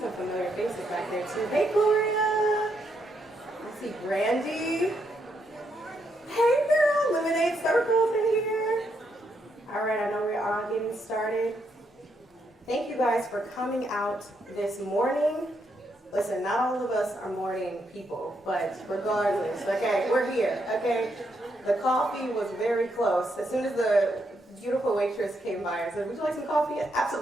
familiar faces back there too. Hey, Gloria. I see Brandy. Hey, girl. Lemonade Circle's in here. All right, I know we're all getting started. Thank you guys for coming out this morning. Listen, not all of us are morning people, but regardless, okay, we're here, okay? The coffee was very close. As soon as the beautiful waitress came by and said, would you like some coffee?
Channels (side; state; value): both; normal; correlation 0.78